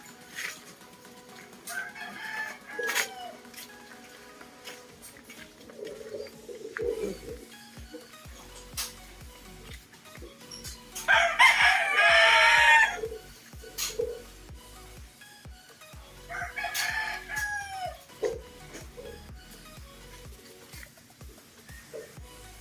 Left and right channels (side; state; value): both; identical; correlation 1.00